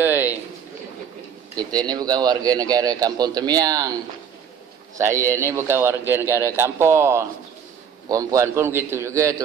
Kita ni bukan warga negara Kampung Temiang. Saya ni bukan warga negara kampung. Perempuan pun begitu juga,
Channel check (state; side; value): quieter; left; 7.6 dB